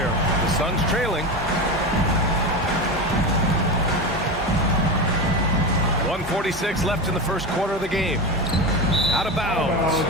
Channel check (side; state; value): both; normal; correlation 0.21